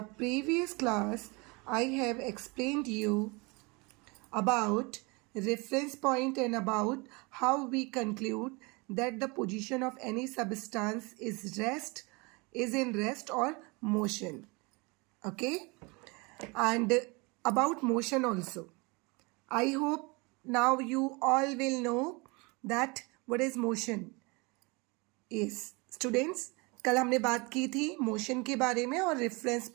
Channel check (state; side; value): quieter; left; 27.8 dB